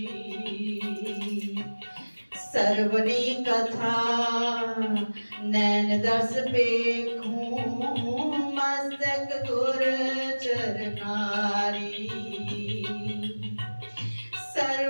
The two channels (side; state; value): both; inverted; correlation -1.00